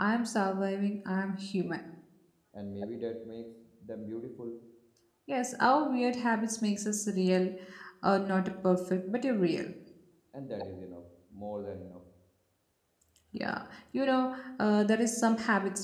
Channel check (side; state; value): both; identical; correlation 1.00